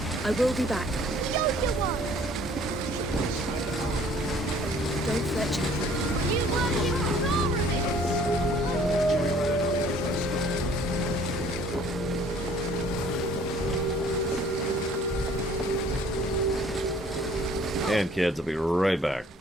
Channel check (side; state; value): both; normal; correlation 0.56